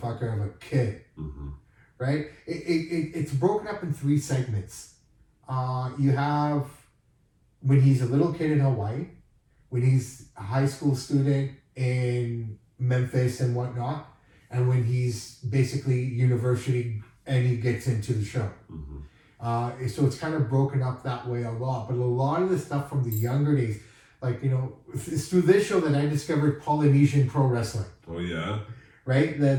of a kid. Right? It's broken up in 3 segments. You have when he's a little kid in Hawaii, when he's a high school student in Memphis and whatnot, and when he's basically university and he gets into the show. So it's kind of broken up that way a lot. But a lot of the stuff from the younger days, like, you know, it's through this show that I discovered Polynesian pro wrestling. Oh, yeah? Right?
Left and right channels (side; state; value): both; identical; correlation 1.00